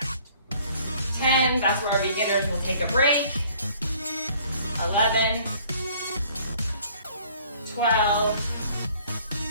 10, that's where our beginners will take a break. 11, 12,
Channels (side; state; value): both; inverted; correlation -0.56